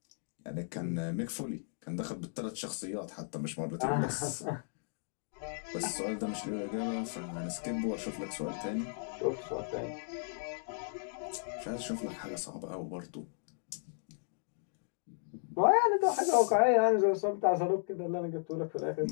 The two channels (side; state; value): right; silent; digital silence